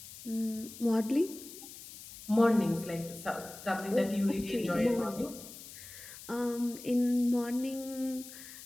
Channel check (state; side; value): noise; left; hiss, 15 dB below the sound